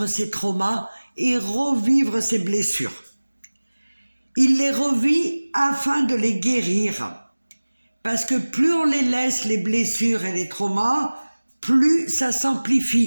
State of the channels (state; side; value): inverted; both; correlation -1.00